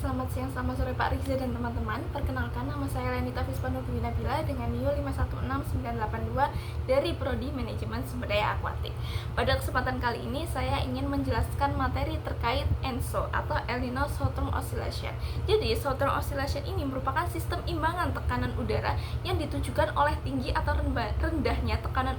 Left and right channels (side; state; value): both; identical; correlation 1.00